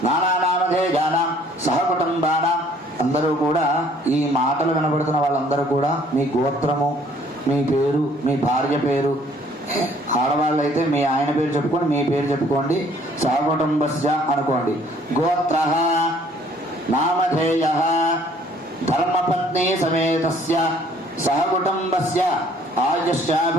నానానామధేయానాం సహకుటుంబానాం. అందరూ కూడా ఈ మాటలు వినబడుతున్న వాళ్ళందరూ కూడా మీ గోత్రము, మీ పేరు, మీ భార్య పేరు, ఆడవాళ్ళు అయితే మీ ఆయన పేరు చెప్పుకోండి, మీ పేరు చెప్పుకోండి, సహకుటుంబస్య అనుకోండి. గోత్రః నామధేయః ధర్మపత్ని సమేతస్య సహకుటుంబస్య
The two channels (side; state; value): both; normal; correlation 0.59